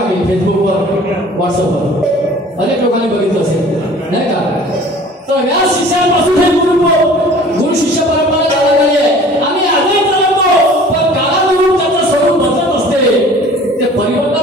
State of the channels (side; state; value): both; normal; correlation 0.47